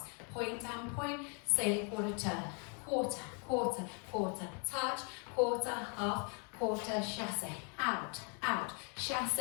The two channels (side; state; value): right; quieter; 38.2 dB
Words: point and point, sail quarter turn, quarter, quarter, quarter, touch, quarter, half, quarter, chassé, out, out,